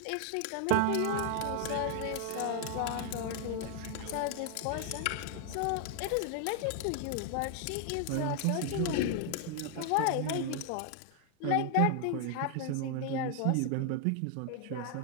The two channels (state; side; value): different; both; correlation 0.00